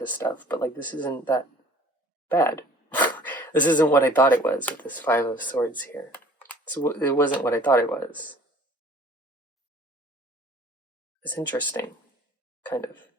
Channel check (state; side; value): normal; both; correlation 0.51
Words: stuff, but like this isn't that bad. This isn't what I thought it was with this Five of Swords here. So it wasn't what I thought it was. It's interesting, kind of,